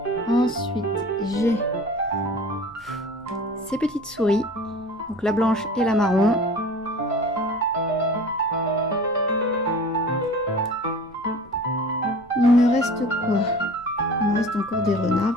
Ensuite, j'ai ces petites souris. Donc la blanche et la marron. Il me reste quoi? Il me reste encore des renards.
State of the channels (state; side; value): noise; right; rumble, 27 dB below the sound